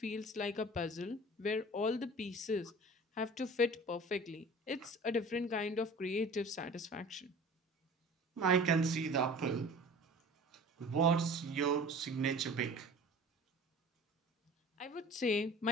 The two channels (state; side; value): normal; both; correlation 0.42